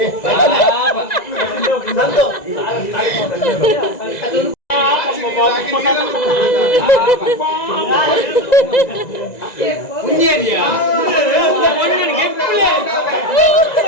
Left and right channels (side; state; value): right; late; 1.9 ms